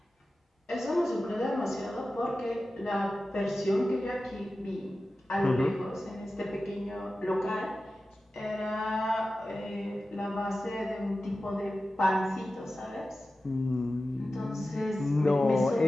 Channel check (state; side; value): normal; both; correlation 0.94